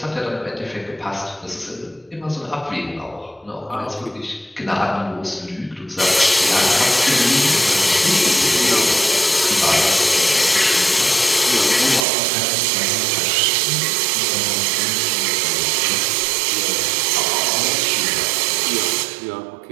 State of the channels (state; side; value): drops out; left; at 12.1 s